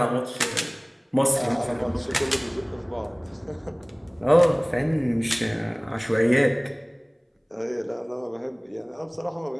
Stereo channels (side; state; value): both; identical; correlation 1.00